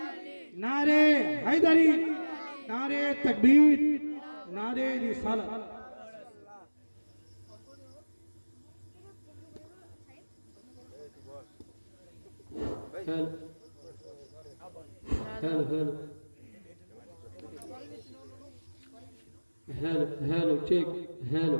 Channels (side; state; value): both; inverted; correlation -1.00